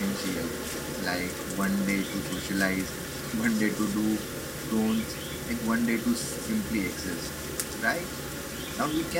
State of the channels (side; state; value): both; identical; correlation 1.00